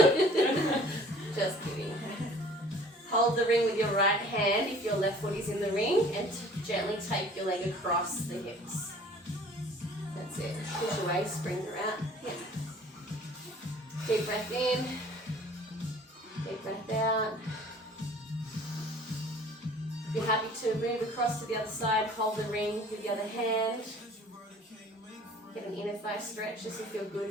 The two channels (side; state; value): both; normal; correlation 0.51